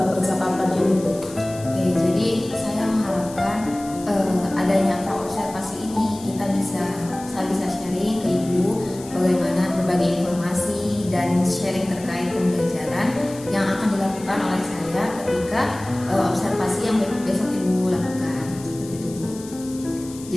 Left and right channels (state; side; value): noise; left; hiss, 18 dB below the sound